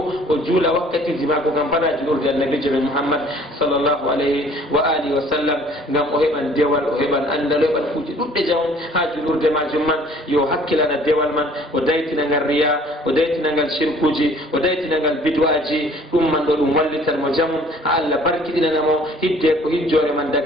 o juula wakkatiji maako kam fana julurde annabijo men muhammad sallllahu alayhi wa alihi wa sallam ngam o heɓan dewal o heɓan andal o heɓan kuuji ɗuɗɗe jamum ha julurde majum man yo hakkilana dewal man o daytinagal riya o daytinagal shirkuji o daytinagal bid'aji ɗum man ɗo ɗum wallitan mo jamum ha Allah barkiɗinanamo hidde ko hijjore man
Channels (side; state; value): both; normal; correlation 0.54